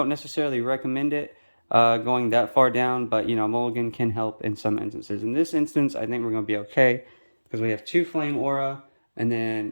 necessarily recommend it going that far down, but mulligan can help in some instances. In this instance, I think we're going to be okay because we have 2 flame aura, and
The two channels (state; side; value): inverted; both; correlation -1.00